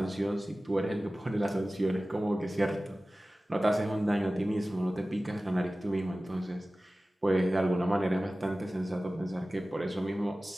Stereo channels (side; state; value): both; normal; correlation 0.97